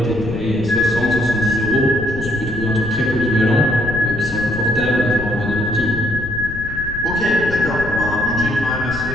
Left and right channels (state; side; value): noise; left; rumble, 10 dB below the sound